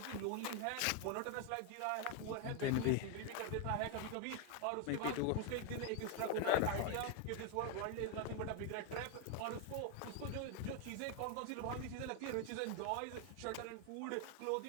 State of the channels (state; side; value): different; both; correlation 0.01